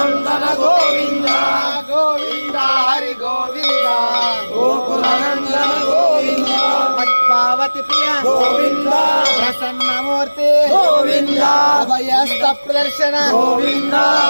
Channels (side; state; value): both; inverted; correlation -1.00